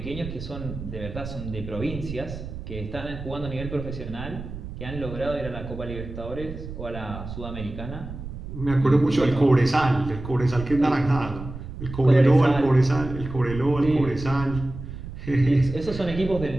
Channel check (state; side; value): noise; right; rumble, 10 dB below the sound